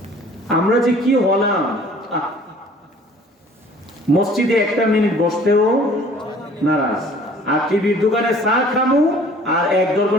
আমরা যে কি হলাম, মসজিদে 1 মিনিট বসতেও নারাজ, আর টিভির দোকানে চা খামু আর 1-1.5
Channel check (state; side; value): normal; both; correlation 0.52